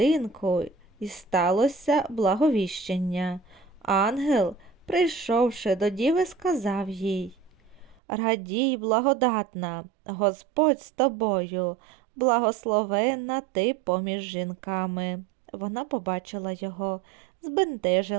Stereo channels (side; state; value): left; drops out; at 8.0 s